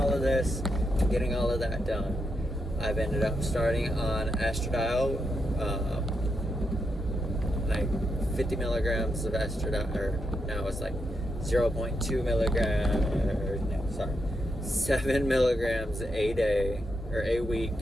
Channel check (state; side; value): normal; both; correlation 0.83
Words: of this, getting all of that done, I've ended up starting on estradiol, 50 milligrams of estradiol, or now it's 0.2 milligrams, 7 milligrams a day, or a week,